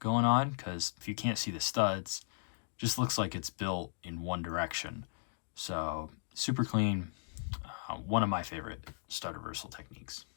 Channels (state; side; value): silent; right; digital silence